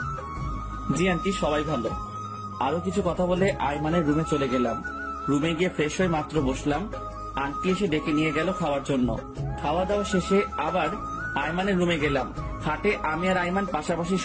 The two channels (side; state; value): both; identical; correlation 1.00